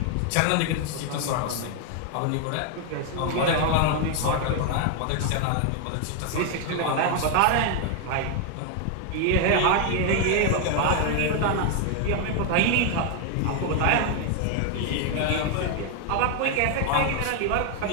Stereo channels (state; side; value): different; both; correlation 0.00